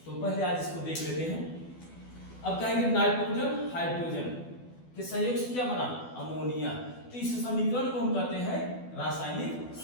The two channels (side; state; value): right; late; 12 ms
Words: तो पहले आज इसको देख लेते हैं। अब कहेंगे नाइट्रोजन हाइड्रोजन के संयोग से क्या बना, अमोनिया। तो इस समीकरण को हम कहते हैं रासायनिक